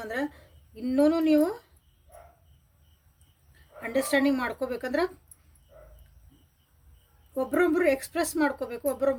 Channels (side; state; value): both; identical; correlation 1.00